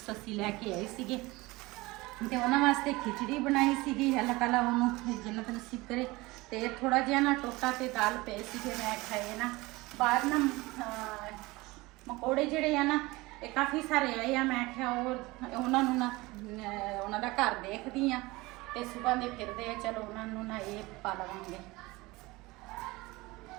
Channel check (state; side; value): quieter; left; 21.7 dB